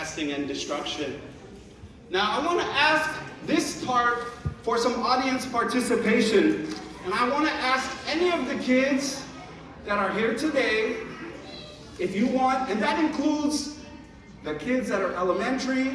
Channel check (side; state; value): both; identical; correlation 1.00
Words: and destruction. Now, I want to ask this part for some audience participation. And I want to ask any of the kids that are here today, if you want, and that includes the kids that are